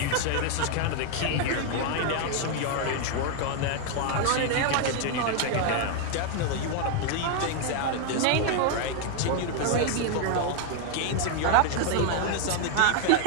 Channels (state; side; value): different; both; correlation 0.00